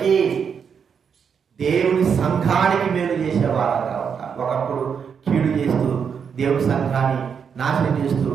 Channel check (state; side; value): quieter; left; 6.8 dB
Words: దేవుని సంఘానికి మేలు చేసేవారంగా ఉంటారు. ఒకప్పుడు కీడు చేస్తూ దేవుని సంఘాన్ని నాశనం చేస్తూ